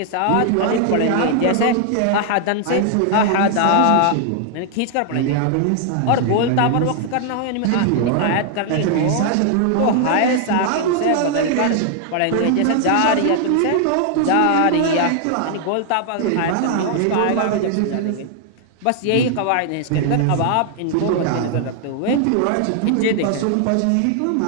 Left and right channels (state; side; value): different; both; correlation 0.00